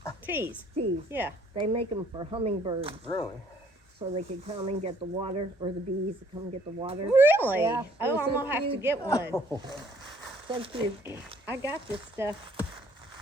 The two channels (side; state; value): both; normal; correlation 0.61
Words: Teas. Tees. Yeah. They make them for hummingbirds. Really? So they can come and get the water, or the bees to come and get the water. Really? Yeah, Oh, they're I'm so going to have to cute. get one. So cute. I got this stuff.